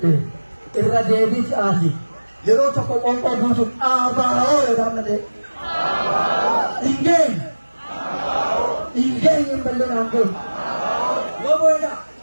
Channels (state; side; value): inverted; both; correlation -1.00